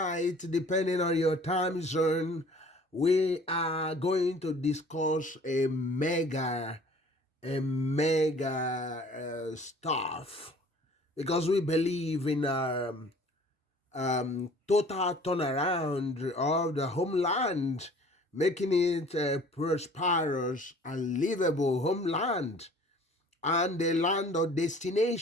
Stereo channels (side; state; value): both; normal; correlation 0.50